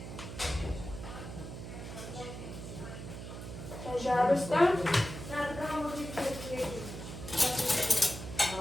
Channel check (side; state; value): right; noise; hum, 9 dB below the sound